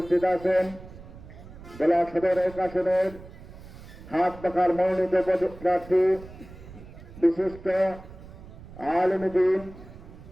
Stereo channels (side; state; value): right; noise; rumble, 17 dB below the sound